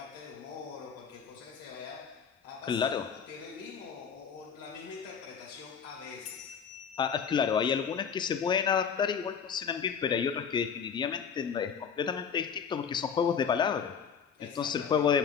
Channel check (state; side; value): quieter; right; 6.9 dB